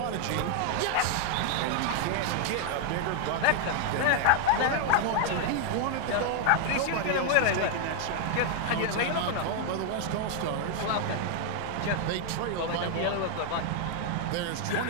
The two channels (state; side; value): different; both; correlation 0.00